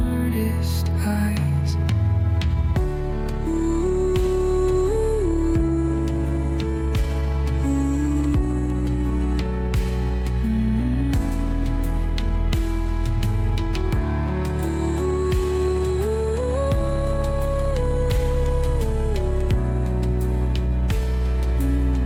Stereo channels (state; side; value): identical; both; correlation 1.00